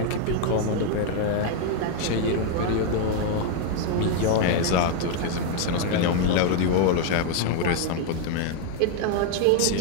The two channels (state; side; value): different; both; correlation 0.01